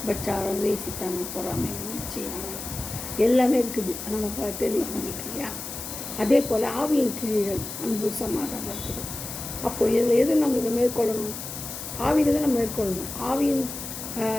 பச்சாரம், வேசித்தனம், பொறாமை, சீனாவை எல்லாமே இருக்குது, நமக்கு தெரியும் நம்மளுக்கு இல்லையா. அதே போல் ஆவியின் கிரியைகள் அன்பு, சமாதானம் இருக்குது. அப்போது இதில் எது நம்மளுக்கு மேற்கொள்ளணும்? ஆவியில் தான் நம்ம மேற்கொள்ளணும். ஆவியின்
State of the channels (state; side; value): noise; left; hiss, 8 dB below the sound